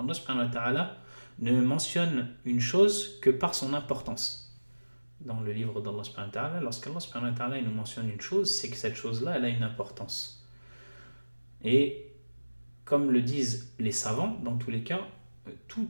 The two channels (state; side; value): inverted; both; correlation -1.00